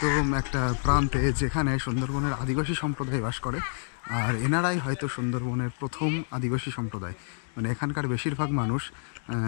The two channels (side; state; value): right; silent; digital silence